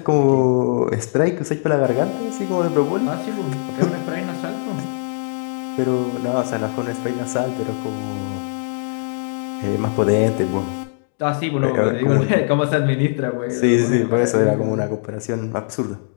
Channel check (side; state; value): right; silent; digital silence